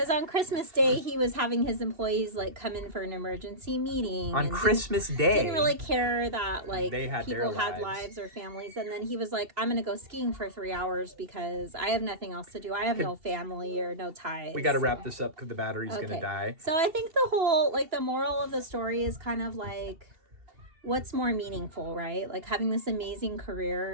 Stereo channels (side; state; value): left; late; 2.7 ms